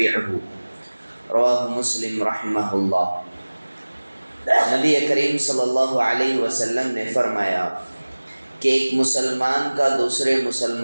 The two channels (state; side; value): inverted; both; correlation -1.00